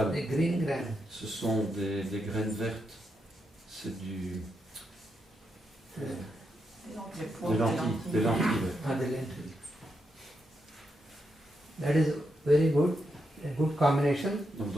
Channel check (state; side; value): normal; both; correlation 0.83